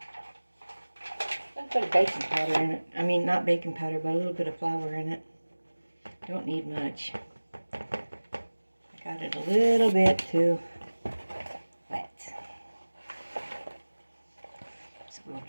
put a baking powder in it. I mean, not baking powder, but a little bit of flour in it. Don't need much. I got it a little bit too wet. So we'll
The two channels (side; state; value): both; inverted; correlation -1.00